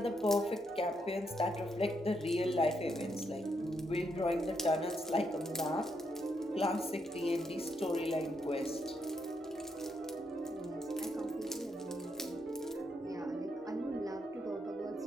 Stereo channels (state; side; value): normal; both; correlation 0.79